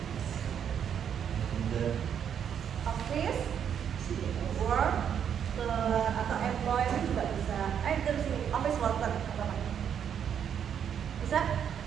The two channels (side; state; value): left; quieter; 8.4 dB